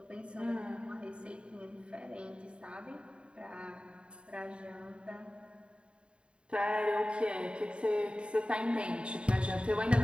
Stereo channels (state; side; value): late; left; 0.054 ms